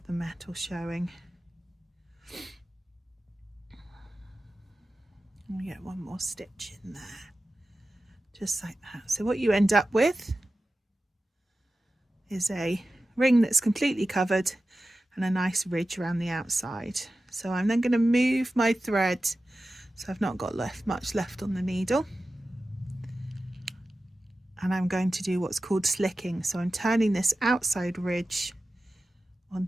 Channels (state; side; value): normal; both; correlation 0.94